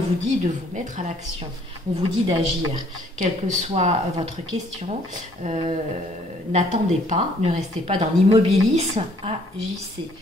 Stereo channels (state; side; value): normal; both; correlation 0.62